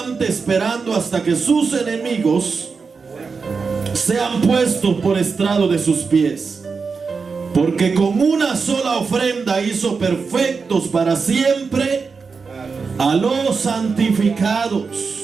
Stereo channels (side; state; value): left; quieter; 5.0 dB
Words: esperando hasta que sus enemigos sean puestos por estrado de sus pies. Porque con una sola ofrenda hizo perfectos para siempre a los santificados.